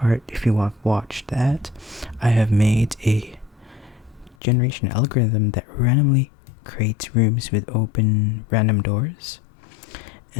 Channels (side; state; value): right; drops out; at 4.4 s